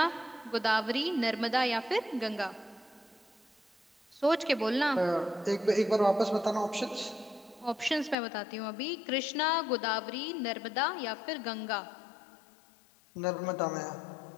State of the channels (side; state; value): right; drops out; at 8.2 s